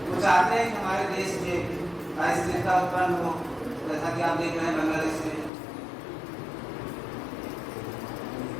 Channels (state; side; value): drops out; right; at 5.5 s